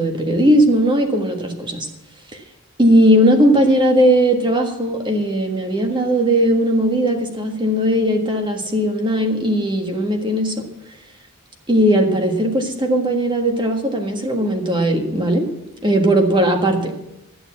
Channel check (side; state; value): both; normal; correlation 0.50